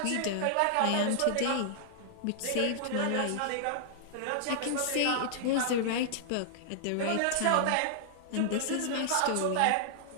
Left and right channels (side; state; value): both; different; correlation -0.01